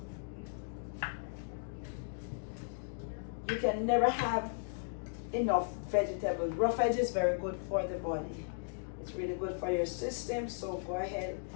You can never have enough vegetables. Raw veg is very good for the body. It's really good for your system, so go ahead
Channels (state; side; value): silent; right; digital silence